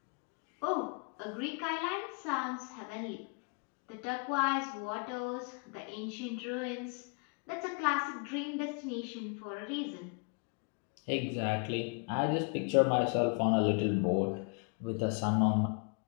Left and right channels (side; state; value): right; quieter; 36.2 dB